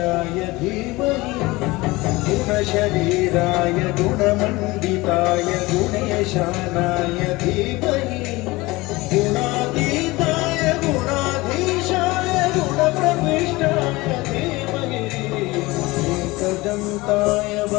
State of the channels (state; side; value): quieter; right; 21.5 dB